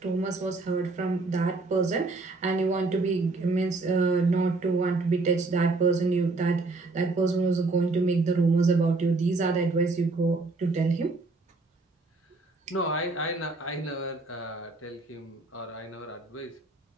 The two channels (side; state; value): left; quieter; 3.4 dB